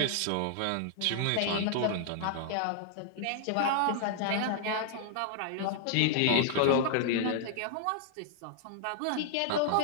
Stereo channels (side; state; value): both; different; correlation -0.01